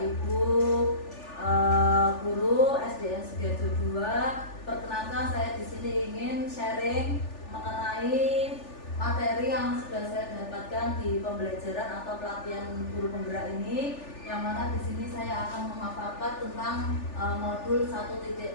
Ibu guru SDN Sugiharjo II, perkenalkan saya di sini ingin sharing mengenai materi yang sudah saya dapatkan di pembelajaran atau pelatihan guru penggerak ini, yang mana di sini saya akan memaparkan tentang modul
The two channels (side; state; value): right; late; 3.4 ms